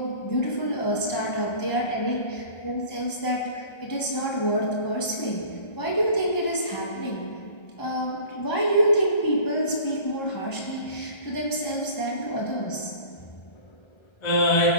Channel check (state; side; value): late; right; 1.3 ms